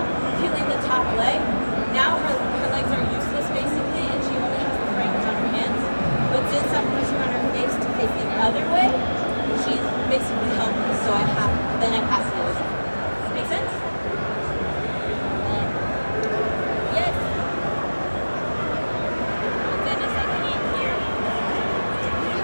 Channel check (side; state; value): both; inverted; correlation -1.00